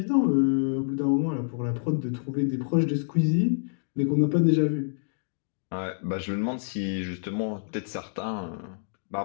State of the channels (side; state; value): right; silent; digital silence